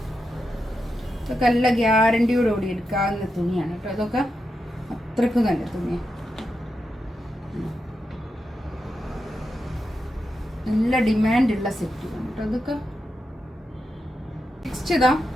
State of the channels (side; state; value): both; normal; correlation 0.87